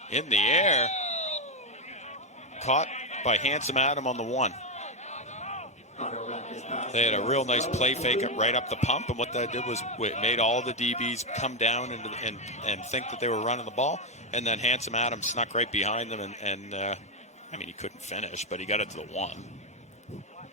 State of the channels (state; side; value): normal; both; correlation 0.06